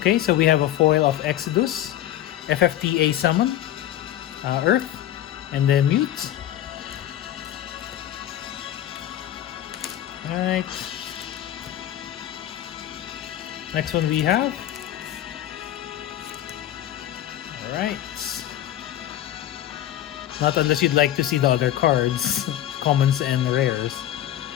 so we have a foil of Exodus, FFTA Summon, Earth, and then Mute. Alright. Next one we have. Alright. Not unless you'd like to see the other cards, commons and rares.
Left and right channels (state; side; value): quieter; right; 12.6 dB